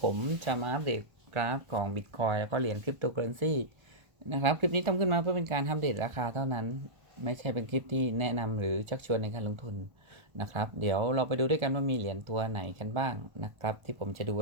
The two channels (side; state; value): left; late; 1.3 ms